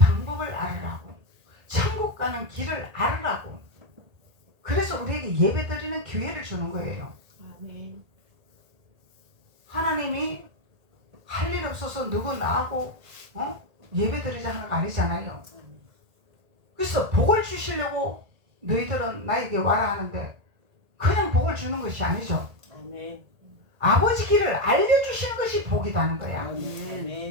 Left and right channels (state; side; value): late; left; 1.8 ms